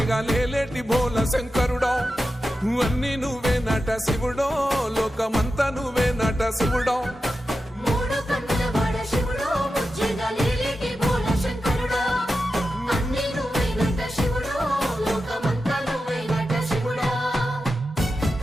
లేలేటి బోల శంకరుడో అన్ని నువ్వే నట శివుడో లోకమంతా నువ్వే నట శివుడో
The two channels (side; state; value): both; normal; correlation 0.91